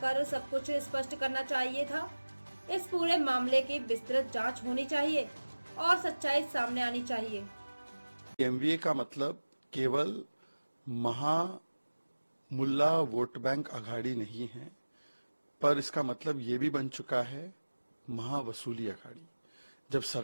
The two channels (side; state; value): both; inverted; correlation -1.00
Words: सब कुछ स्पष्ट करना चाहिए था। इस पूरे मामले की विस्तृत जांच होनी चाहिए और सच्चाई सामने आनी चाहिए। एमवीए का मतलब केवल मुल्ला वोट बैंक अघाड़ी नहीं है, पर इसका मतलब ये भी बन चुका है महावसूली अघाड़ी। जब